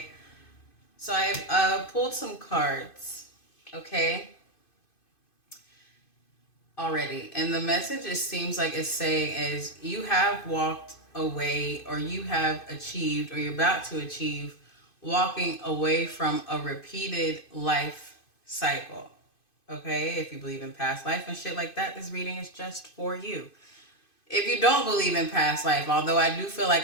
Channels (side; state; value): right; late; 2.5 ms